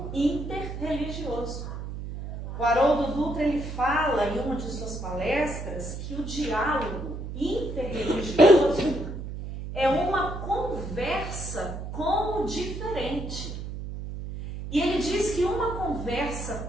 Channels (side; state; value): right; noise; hum, 7 dB below the sound